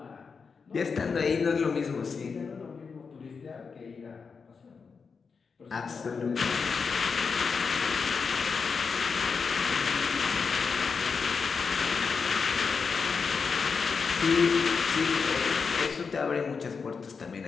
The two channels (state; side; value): quieter; right; 5.3 dB